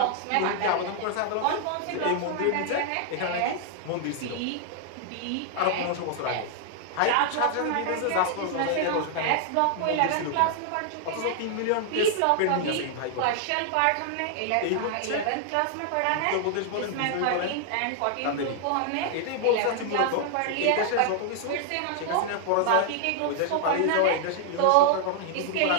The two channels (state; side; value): different; both; correlation 0.00